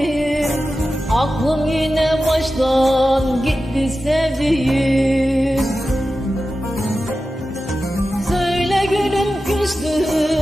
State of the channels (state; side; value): normal; both; correlation 0.93